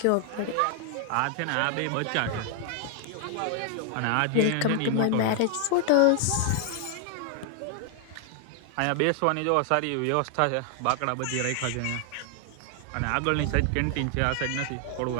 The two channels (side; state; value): both; different; correlation 0.00